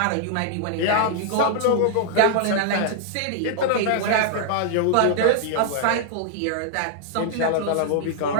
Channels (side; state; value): both; different; correlation -0.01